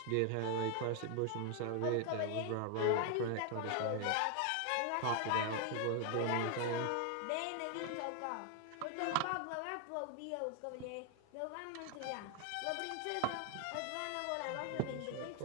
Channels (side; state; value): both; different; correlation 0.00